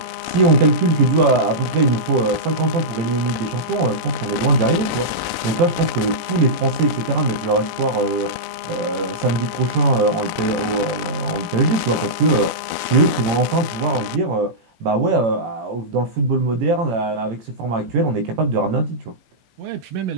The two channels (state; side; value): late; left; 18 ms